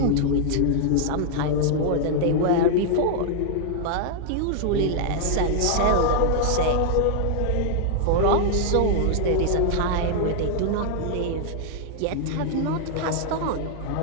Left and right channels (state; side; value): different; both; correlation -0.01